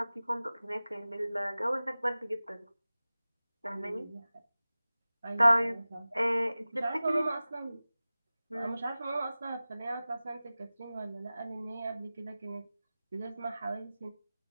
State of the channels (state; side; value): inverted; both; correlation -0.97